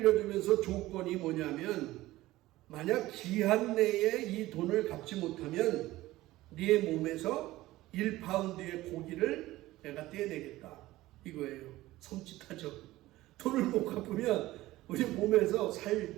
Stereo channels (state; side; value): quieter; left; 17.1 dB